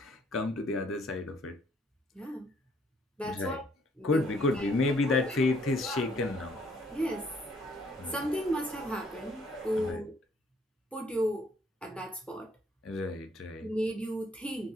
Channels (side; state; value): both; normal; correlation 0.65